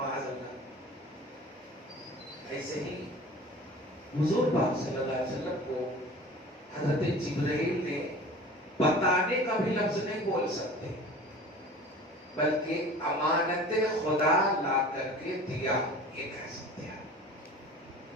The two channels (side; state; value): both; normal; correlation 0.41